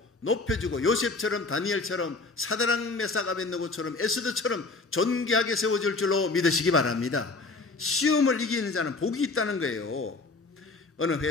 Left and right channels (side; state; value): right; quieter; 3.7 dB